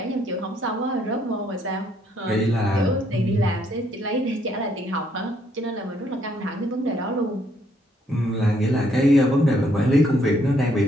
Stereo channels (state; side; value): normal; both; correlation 0.69